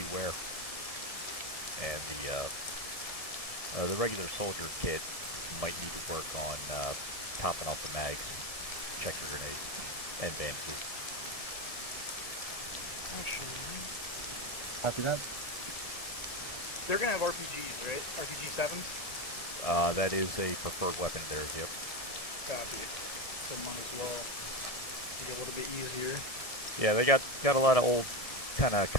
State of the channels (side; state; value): right; late; 1.7 ms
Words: And the regular soldier kit might need to work on topping off the mags, checker grenades, and bandages. Copy that. They're gonna have RPGs, right? RPG 7s? That is a preferred weapon of theirs, yep. Copy. So might as well make it a little bit easier. Yeah, they got a lot of old kind of